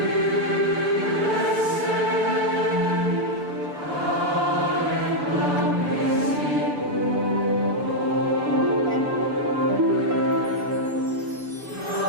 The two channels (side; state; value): left; late; 6.9 ms